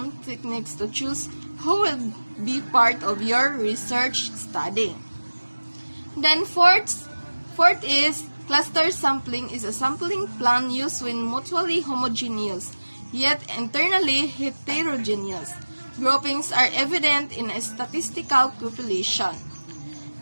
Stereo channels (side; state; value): both; inverted; correlation -1.00